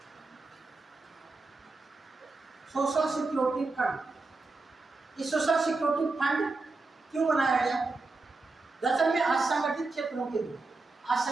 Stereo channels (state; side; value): quieter; left; 3.6 dB